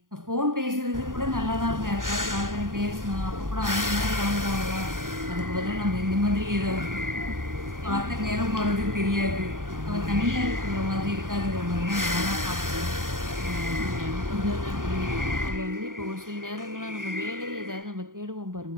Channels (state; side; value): late; left; 0.90 ms